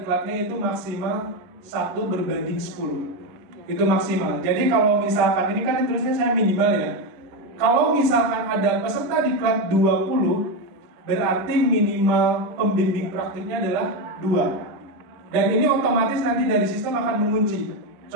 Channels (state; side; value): late; left; 10 ms